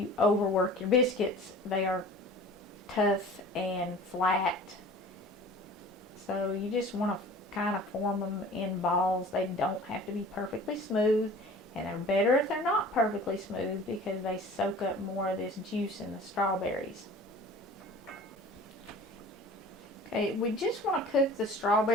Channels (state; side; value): normal; both; correlation 0.44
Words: overwork your biscuits, they are tough and flat. So you just want to kind of form them in balls. They don't have to be perfectly smooth, and they're better if they're not perfectly smooth because they soak up more of this juice in the strawberries. Okay, we just want to cook the